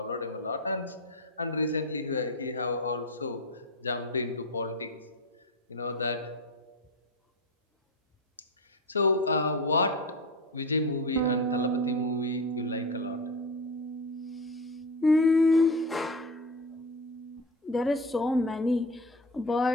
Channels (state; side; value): normal; both; correlation 0.23